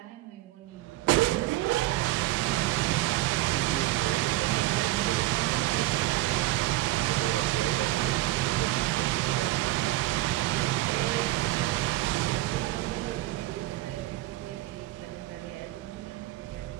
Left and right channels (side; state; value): left; quieter; 16.9 dB